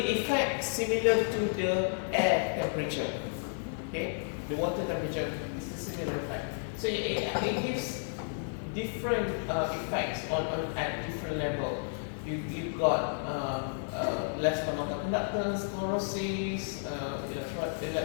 effect similar to the air temperature. Okay, the water temperature is a similar effect. So it gives different effects at different level. You've got less amount of conductance, chlorosis,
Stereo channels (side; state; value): right; silent; digital silence